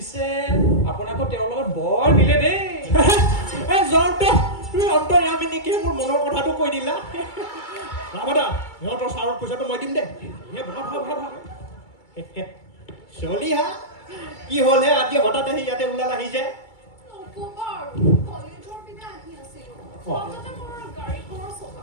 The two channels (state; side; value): late; right; 2.3 ms